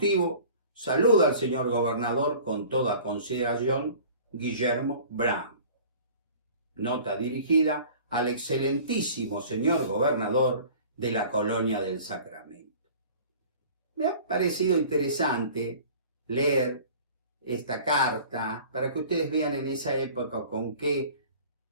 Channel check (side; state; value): both; inverted; correlation -0.45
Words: saluda al señor gobernador con toda consideración, Guillermo Brown. Nota dirigida al excelentísimo señor gobernador de la Colonia del Sacramento. Me ha parecido interesante leer esta carta para que ustedes vean en esa época con qué